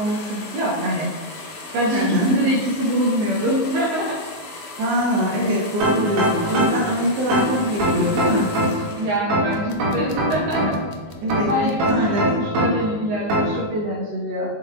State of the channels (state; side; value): late; left; 19 ms